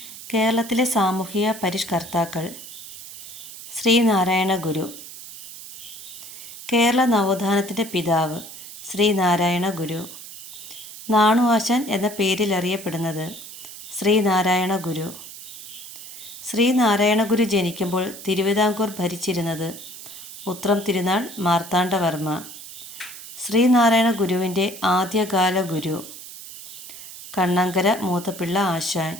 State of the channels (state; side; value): noise; right; hiss, 13 dB below the sound